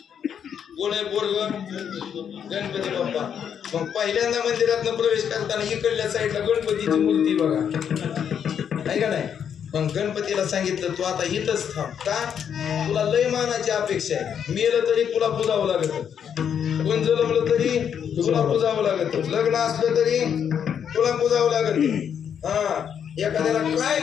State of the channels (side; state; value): right; quieter; 8.2 dB